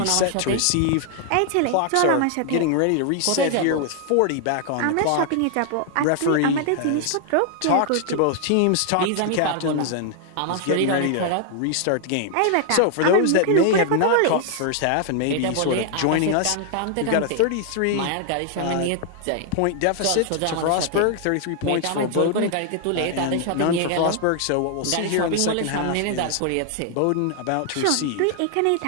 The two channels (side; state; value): both; different; correlation 0.00